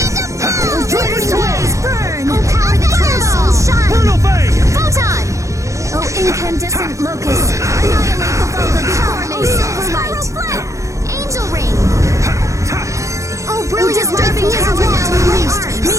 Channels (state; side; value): late; left; 0.15 ms